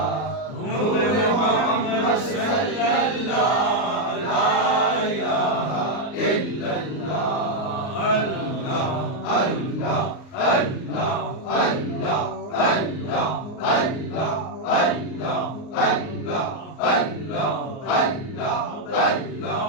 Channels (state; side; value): late; right; 38 ms